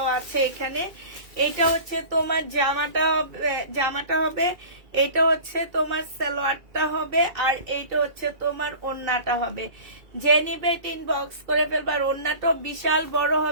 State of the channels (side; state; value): left; late; 2.3 ms